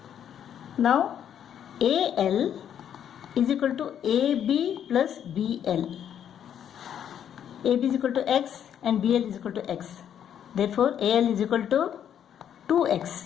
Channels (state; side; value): quieter; right; 9.4 dB